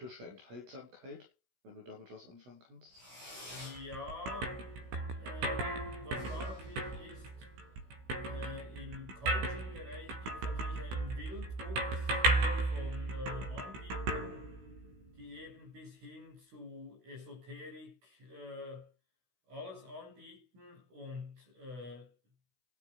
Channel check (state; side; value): late; left; 16 ms